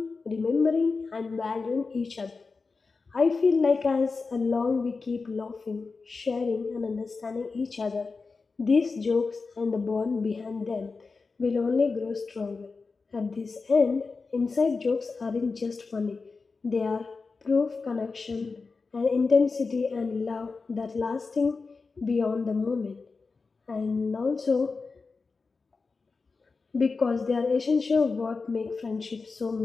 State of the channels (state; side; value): quieter; right; 4.3 dB